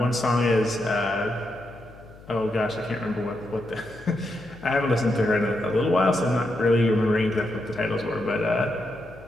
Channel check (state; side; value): noise; left; hum, 21 dB below the sound